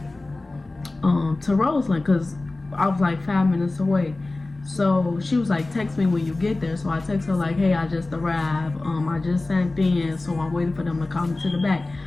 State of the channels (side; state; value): right; quieter; 3.1 dB